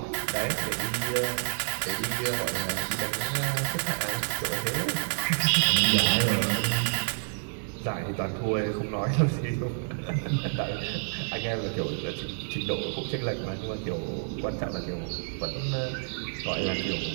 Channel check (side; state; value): left; silent; digital silence